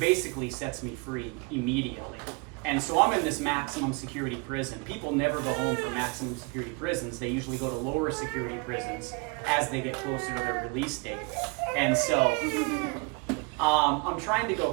sets me free immediately. And so I'm in this maximum security prison. People never go home from maximum security prisons. They usually go to lower security prisons as they get closer to their release date. And so I'm trying to go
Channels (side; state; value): left; quieter; 30.9 dB